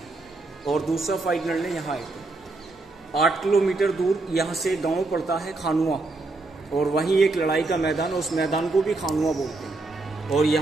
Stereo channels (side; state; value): left; quieter; 3.3 dB